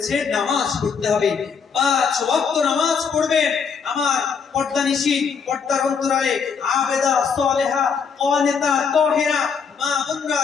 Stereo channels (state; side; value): quieter; right; 6.1 dB